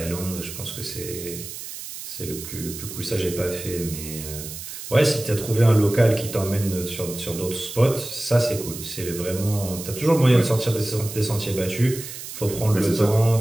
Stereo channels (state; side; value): noise; right; hiss, 10 dB below the sound